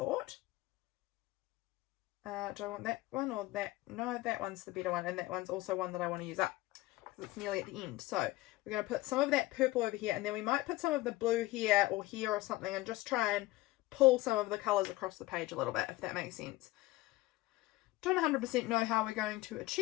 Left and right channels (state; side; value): quieter; right; 18.7 dB